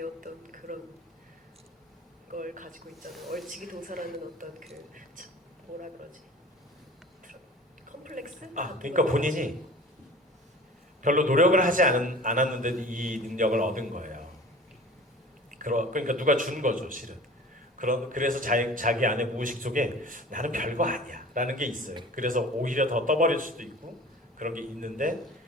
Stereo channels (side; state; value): both; normal; correlation 0.42